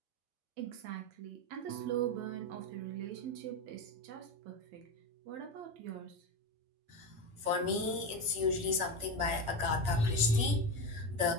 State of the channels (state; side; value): late; left; 8.6 ms